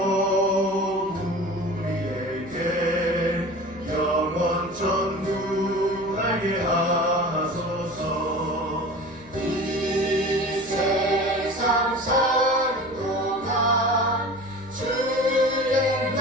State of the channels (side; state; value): left; noise; hum, 25 dB below the sound